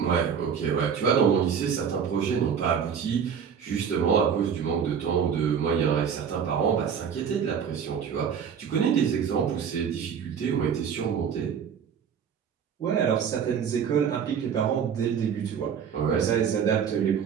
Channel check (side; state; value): left; quieter; 7.4 dB